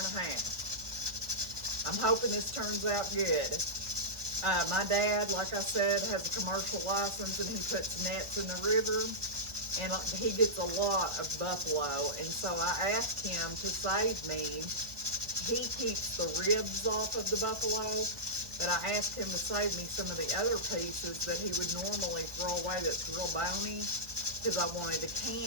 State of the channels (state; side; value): late; left; 1.4 ms